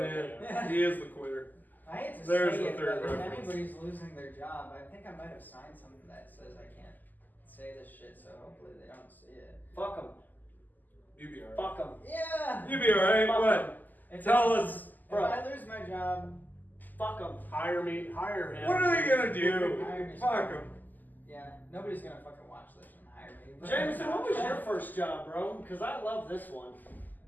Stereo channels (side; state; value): right; late; 0.085 ms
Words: Yeah, he is the quitter. I hate to There's say the it, third but if reference. anybody's losing their job, I think I might have signed something that says I can't say this shit, so hopefully they don't see it. Fuck them. You be alright. Fuck them. Yeah! You be alright. Fuck What? If Tell I- us. If Bro. I lose my job, Fuck them. Hire me. Hire him. What are they gonna do? Hire me. Fuck them. yeah, nobody's gonna fucking watch this and hire me. but- Jameson, what was your first job, bro? Because I love this one.